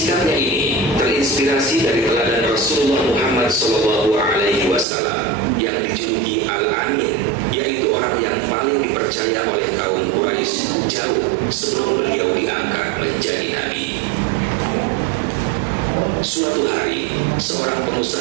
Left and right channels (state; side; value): drops out; left; at 4.9 s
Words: ini terinspirasi dari teladan Rasulullah Muhammad SAW yang dijuluki Al-Amin, yaitu orang yang paling dipercaya oleh kaum Quraisy jauh sebelum beliau diangkat menjadi nabi. Suatu hari, seorang